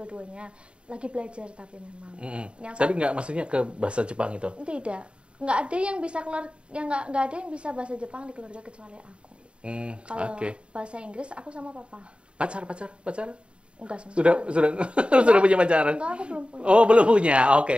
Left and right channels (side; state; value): left; late; 0.056 ms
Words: Lagi belajar tapi memang. Tapi enggak maksudnya ke bahasa Jepang itu? Tidak. Enggak ada yang bisa enggak ada yang bisa bahasa Jepang di keluarga kecuali aku. Kalau bahasa Inggris aku sama papa. Pacar? Enggak sama. Sudah punya pacar? Enggak, aku belum punya. Oh, belum punya.